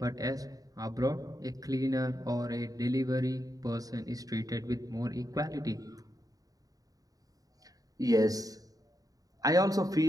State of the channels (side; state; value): left; late; 0.18 ms